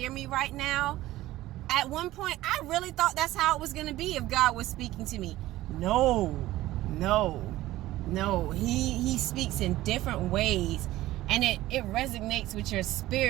me right now. At one point, I really thought that's how it was going to be if God was speaking to me. No. He speaks in different ways. And it resonates with your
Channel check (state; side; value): quieter; left; 16.1 dB